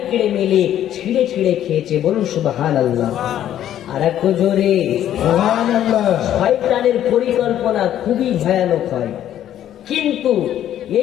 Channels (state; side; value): quieter; right; 11.3 dB